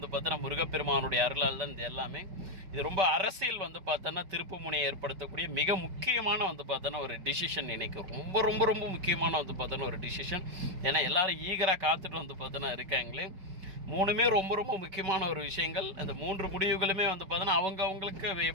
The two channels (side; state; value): left; late; 5.2 ms